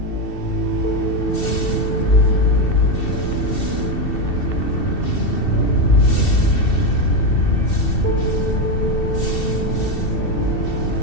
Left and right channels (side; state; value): right; late; 2.7 ms